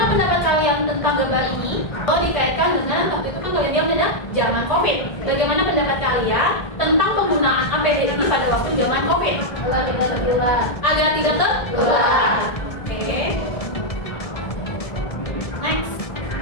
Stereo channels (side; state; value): right; late; 1.7 ms